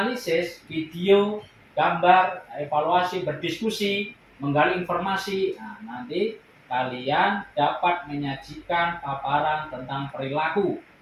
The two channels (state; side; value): identical; both; correlation 1.00